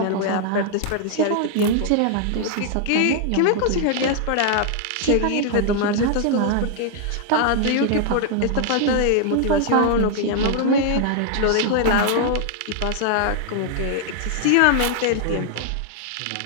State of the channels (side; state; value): both; different; correlation 0.00